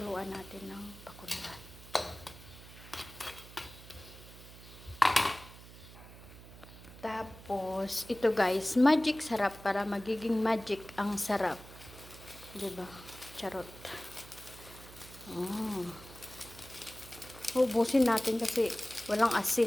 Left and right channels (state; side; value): noise; right; hum, 17 dB below the sound